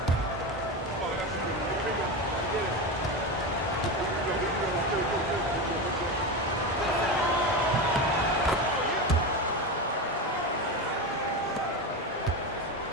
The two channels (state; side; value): normal; both; correlation 0.19